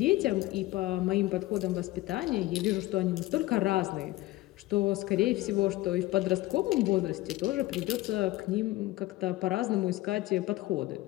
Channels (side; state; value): right; quieter; 18.0 dB